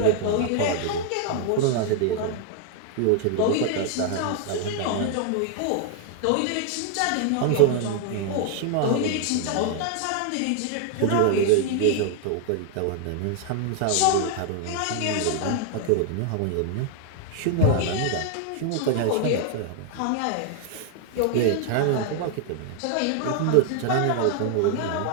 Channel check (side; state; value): both; different; correlation 0.00